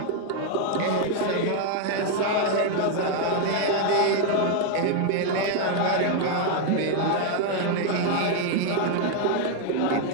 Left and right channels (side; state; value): both; different; correlation 0.01